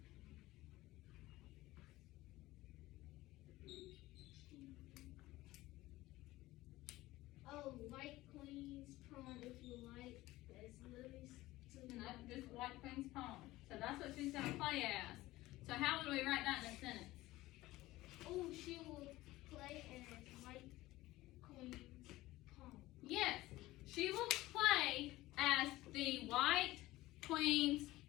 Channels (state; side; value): quieter; right; 17.8 dB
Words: Oh, white queen's pawn if you like. That's Lily's to No, just white queen's pawn. So that's what she's gonna play as. So how would we write that in a sentence? Oh, she will play as white queen's pawn. Yes, she will play as the white queen's